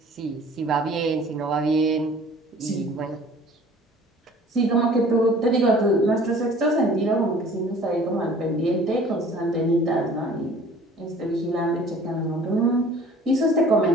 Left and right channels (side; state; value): both; normal; correlation 0.50